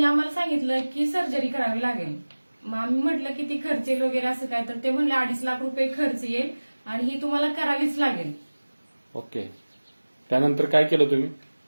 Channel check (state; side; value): inverted; both; correlation -1.00